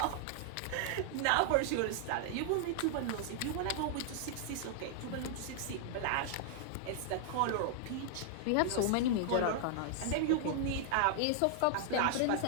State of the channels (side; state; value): both; different; correlation 0.00